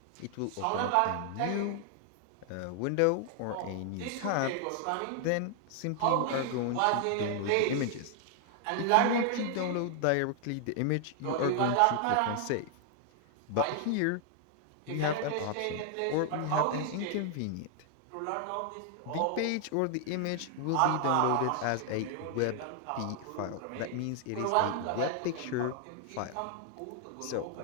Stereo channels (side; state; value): both; different; correlation 0.00